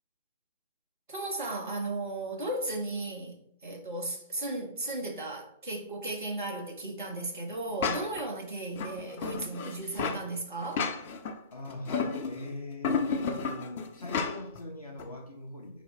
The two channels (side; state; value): both; inverted; correlation -0.31